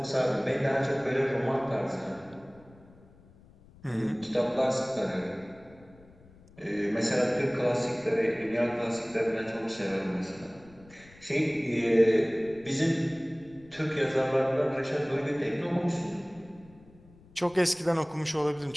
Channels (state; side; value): noise; left; rumble, 25 dB below the sound